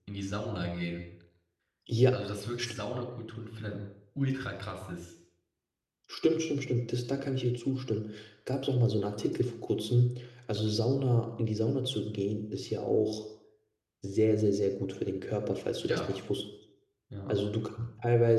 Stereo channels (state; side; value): identical; both; correlation 1.00